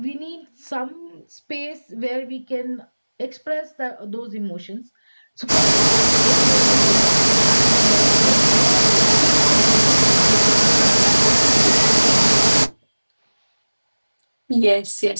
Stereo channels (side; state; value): both; inverted; correlation -1.00